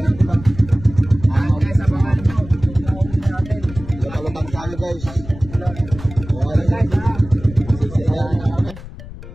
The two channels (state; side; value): noise; left; rumble, 14 dB below the sound